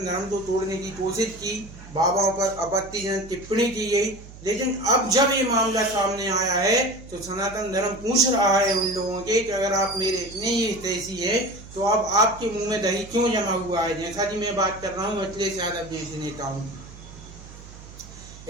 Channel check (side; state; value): right; noise; hum, 17 dB below the sound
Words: धर्म को तोड़ने की कोशिश की, बाबाओं पर आपत्तिजनक टिप्पणी की गई, लेकिन अब जब ये मामला सामने आया है तो सनातन धर्म पूछ रहा है उन लोगों के कि अगर आप मेरे इतने ही हितैषी है तो अब आपके मुंह में दही क्यों जमा हुआ है? जैसा कि मैं बात कर रहा हूँ अखिलेश यादव जैसे नेताओं की।